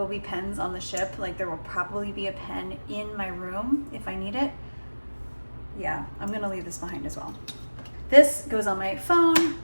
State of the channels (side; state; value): both; inverted; correlation -1.00